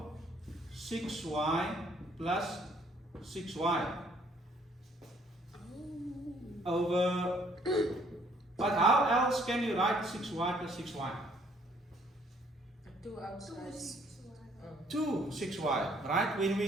6y plus 6y over, but how else can you write 6y plus 6y? 2 outside. 2 6y, right? When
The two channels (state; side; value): normal; both; correlation 0.63